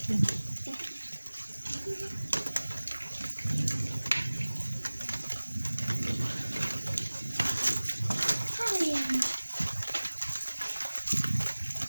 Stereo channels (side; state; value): both; inverted; correlation -1.00